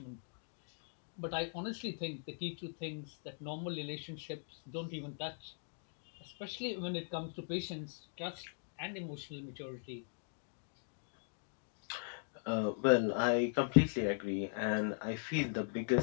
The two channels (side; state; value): right; silent; digital silence